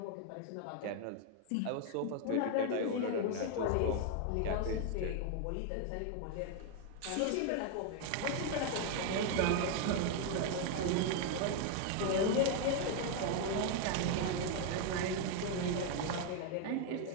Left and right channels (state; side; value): different; both; correlation 0.01